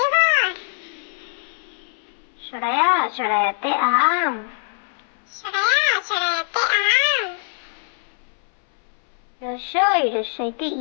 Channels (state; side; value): silent; right; 64 dB below the other